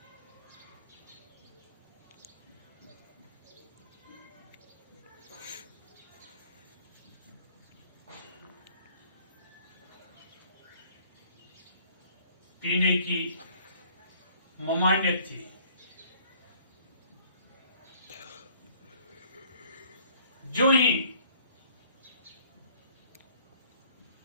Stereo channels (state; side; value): inverted; both; correlation -0.58